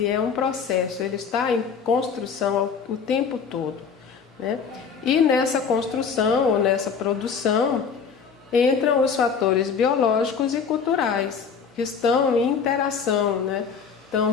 é um processo, ele está em construção o tempo todo, né? E nessa construção ou nessa produção entram os fatores biológicos e culturais que estão em interação, né?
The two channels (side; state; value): right; quieter; 6.2 dB